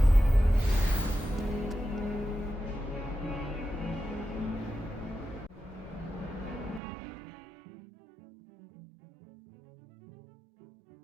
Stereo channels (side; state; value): left; drops out; at 6.8 s